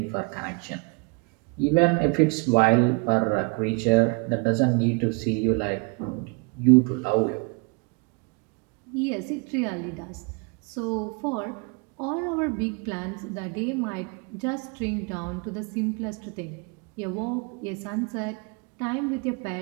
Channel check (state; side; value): quieter; left; 31.6 dB